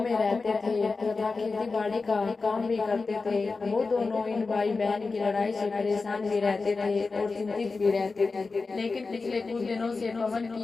रहते थे तथा खेती बाड़ी का काम भी करते थे। वो दोनों इन भाई बहन की लड़ाई से परेशान भी रहते थे और चिंतित भी रहते थे। लेकिन पिछले कुछ दिनों से पवन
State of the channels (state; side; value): quieter; right; 4.1 dB